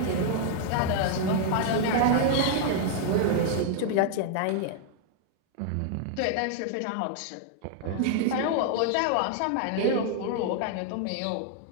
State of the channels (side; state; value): both; different; correlation 0.00